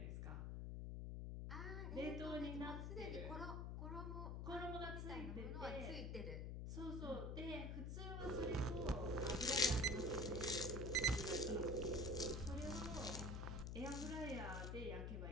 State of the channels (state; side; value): noise; left; hum, 3 dB below the sound